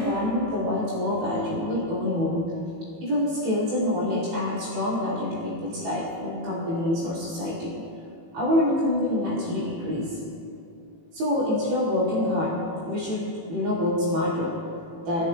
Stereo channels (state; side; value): late; left; 18 ms